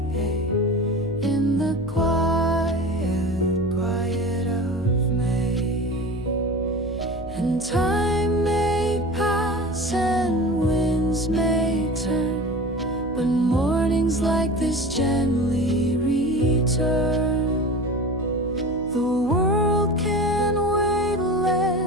in the quiet of May. And time may pass and winds may turn, but mornings like this gently return. The world can wait,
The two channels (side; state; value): right; noise; hum, 16 dB below the sound